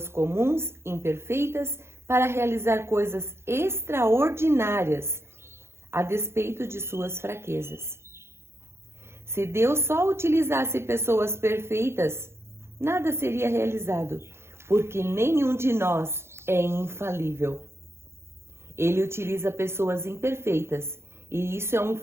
comuns, imperfeitas, para realizar coisas extraordinárias, a despeito de suas fraquezas. Se Deus só utilizasse pessoas perfeitas, nada seria realizado, porque nenhum de nós é infalível. Ele utiliza pessoas imperfeitas, e isso é um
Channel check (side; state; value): left; late; 0.12 ms